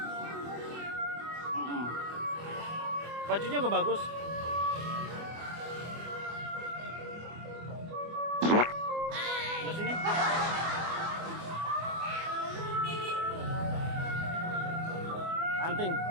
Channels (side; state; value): left; late; 24 ms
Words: Bajunya juga bagus. Di sini. Anting.